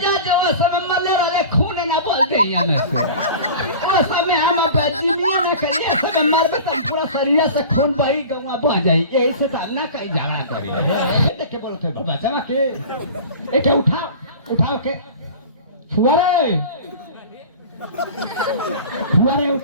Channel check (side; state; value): both; inverted; correlation -0.38